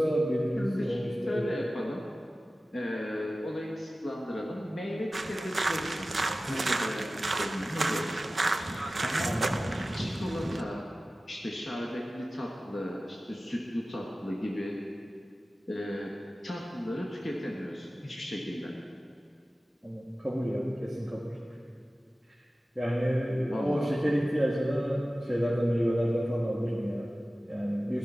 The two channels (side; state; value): both; normal; correlation 0.96